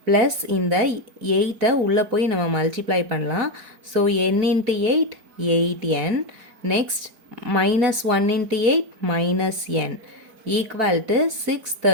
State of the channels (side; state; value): left; late; 4.6 ms